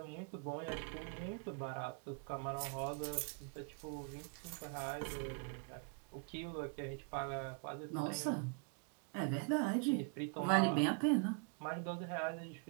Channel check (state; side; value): quieter; left; 35.4 dB